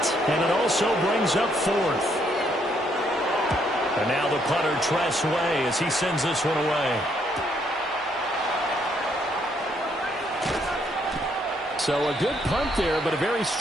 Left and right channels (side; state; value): both; normal; correlation 0.71